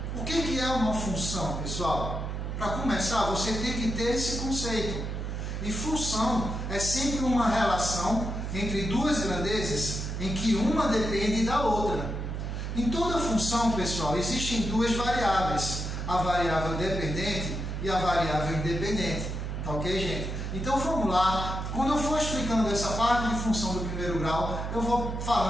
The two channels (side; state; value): right; noise; hum, 4 dB below the sound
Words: o que é uma função, pessoal? Para começar, você tem que ter esse conceito. E função é sempre uma relação entre duas grandezas em que uma depende da outra. Em toda função, pessoal, existem duas variáveis, a variável dependente e a variável independente. Tá ok, gente? Então vamos lá. Quando eu for explicando essa parte de função do primeiro grau, eu vou